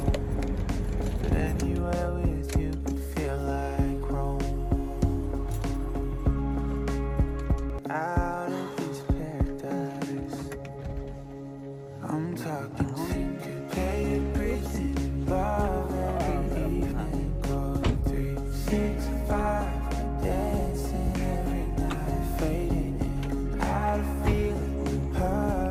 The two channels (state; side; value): identical; both; correlation 1.00